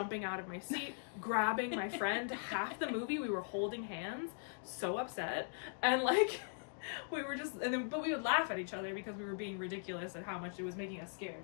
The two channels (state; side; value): silent; right; digital silence